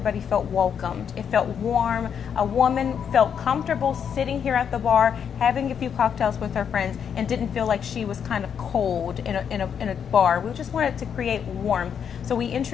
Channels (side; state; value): right; quieter; 7.7 dB